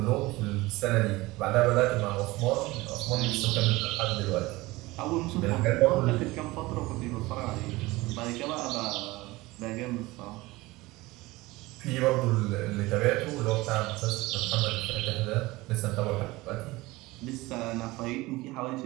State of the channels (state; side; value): quieter; left; 20.5 dB